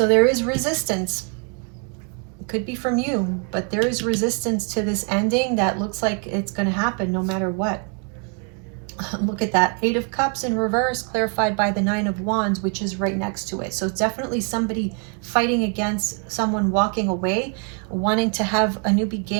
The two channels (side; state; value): left; quieter; 39.1 dB